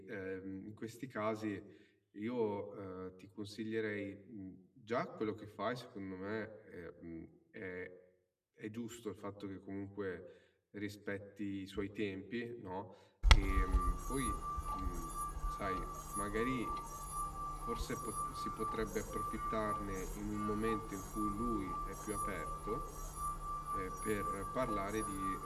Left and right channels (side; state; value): both; identical; correlation 1.00